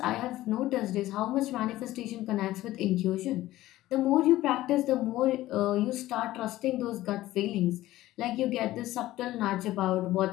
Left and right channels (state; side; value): quieter; right; 15.9 dB